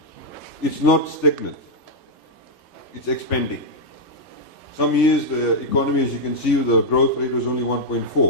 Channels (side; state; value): both; normal; correlation -0.04